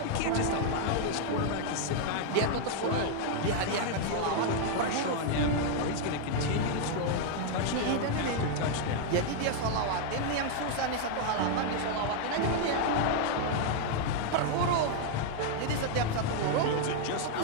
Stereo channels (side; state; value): both; different; correlation 0.00